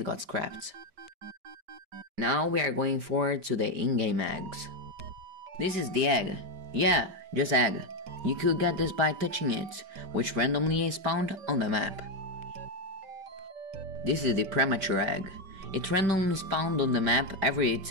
got scrapped. Now we are going forward to the in-game eggs. This is the egg. Yeah, just egg. You could get this by touching it, which randomly is spawned on the map. This is the premature egg. It randomly spawned on the map every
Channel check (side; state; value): left; late; 5.0 ms